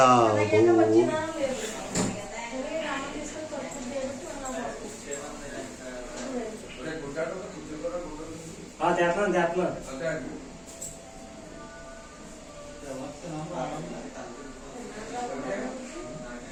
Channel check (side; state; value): both; identical; correlation 1.00